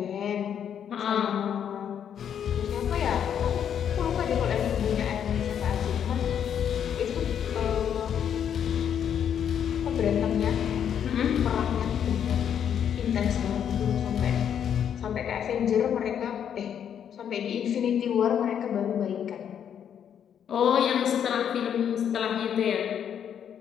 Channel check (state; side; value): quieter; right; 8.8 dB